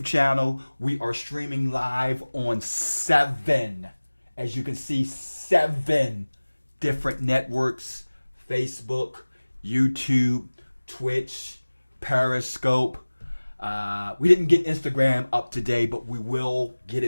channel. We are streaming live on 7, as you can see, 7 different networks: Facebook, YouTube, Twitch, Periscope. We didn't get Instagram up today, but we will get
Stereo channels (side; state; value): both; inverted; correlation -1.00